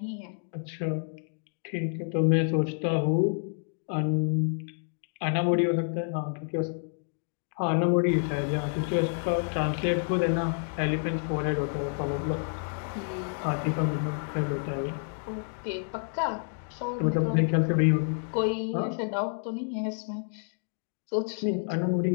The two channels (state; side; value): silent; right; 59 dB below the other